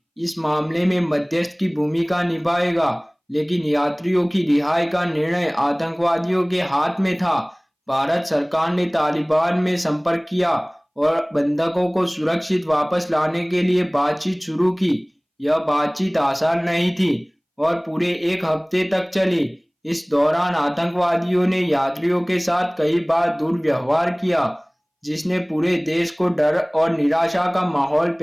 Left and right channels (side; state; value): both; identical; correlation 1.00